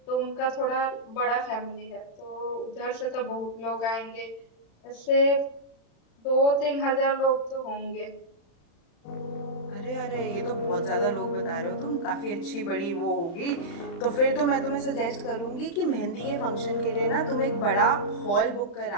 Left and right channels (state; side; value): late; right; 36 ms